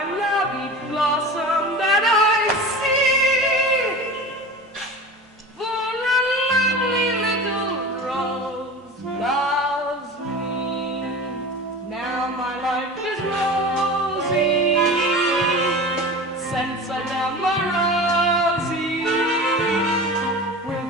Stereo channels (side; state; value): both; normal; correlation 0.33